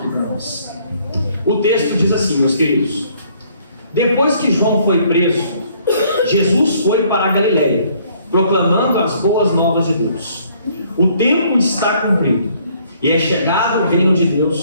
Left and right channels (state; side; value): inverted; both; correlation -0.63